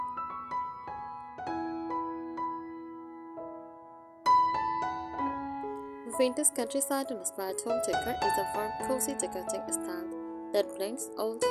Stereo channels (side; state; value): both; identical; correlation 1.00